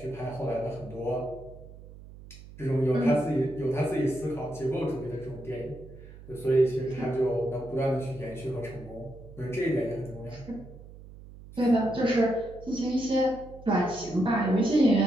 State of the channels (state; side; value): noise; right; hum, 17 dB below the sound